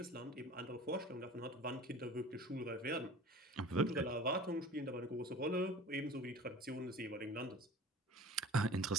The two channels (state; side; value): normal; both; correlation 0.42